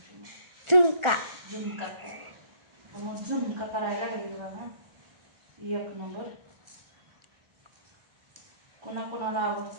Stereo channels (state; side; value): late; left; 1.4 ms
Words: झुणका. झुणका खायचा. मग झुणका करायला लागेल बघा. एक नंबर. कोणाला